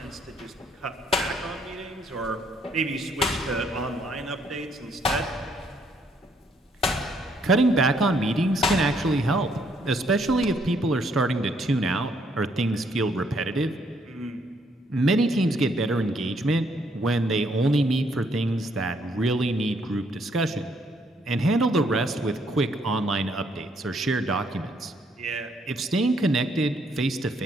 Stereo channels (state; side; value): normal; both; correlation 0.70